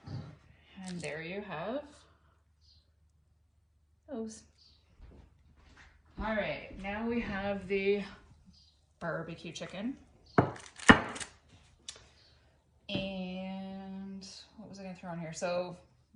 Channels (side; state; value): both; identical; correlation 1.00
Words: And there you have those. All right, now we have the barbecue chicken. And what was I gonna throw on here? So